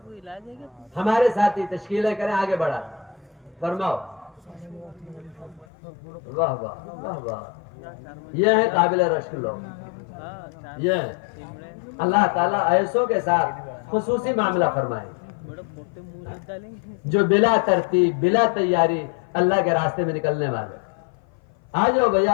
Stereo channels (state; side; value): drops out; right; at 5.7 s